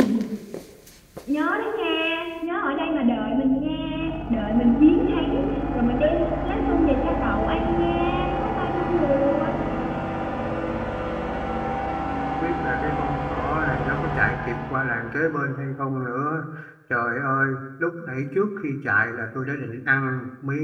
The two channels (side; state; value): both; identical; correlation 1.00